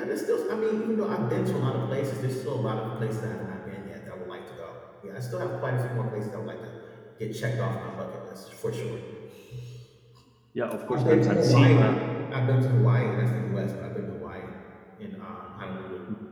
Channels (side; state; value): both; identical; correlation 1.00